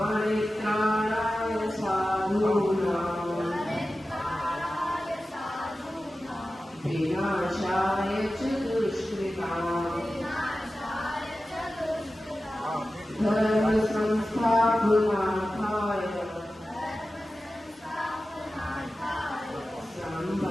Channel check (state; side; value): normal; both; correlation 0.94